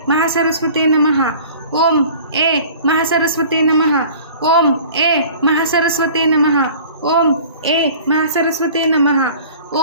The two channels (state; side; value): inverted; both; correlation -0.45